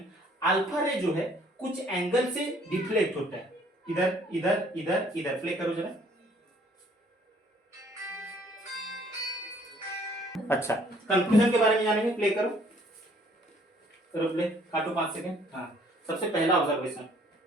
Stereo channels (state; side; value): normal; both; correlation 0.60